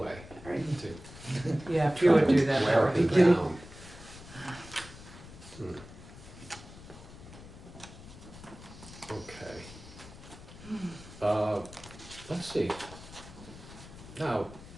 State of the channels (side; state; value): left; noise; rumble, 16 dB below the sound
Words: All right. to Yeah, if you would do that, wear that would it be great. down. Okay. Let's see. Now,